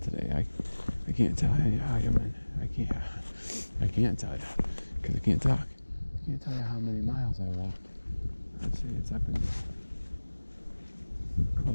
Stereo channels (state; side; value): inverted; both; correlation -1.00